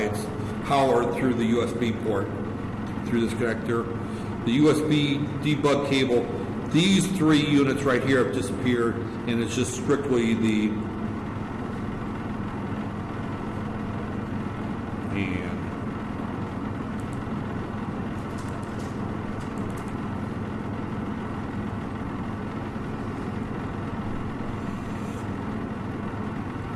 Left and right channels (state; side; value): identical; both; correlation 1.00